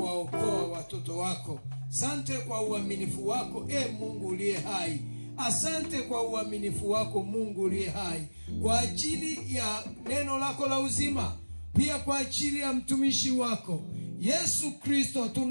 watoto wako. Asante kwa uaminifu wako, Mungu uliye hai. Asante kwa uaminifu wako Mungu uliye hai, kwa ajili ya neno lako la uzima, pia kwa ajili ya mtumishi wako Yesu Kristo.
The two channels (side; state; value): both; inverted; correlation -1.00